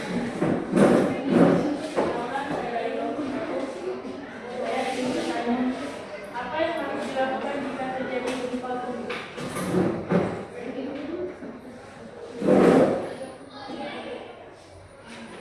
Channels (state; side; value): identical; both; correlation 1.00